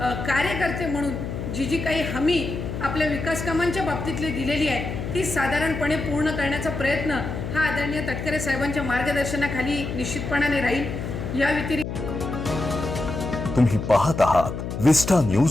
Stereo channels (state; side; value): noise; left; hum, 5 dB below the sound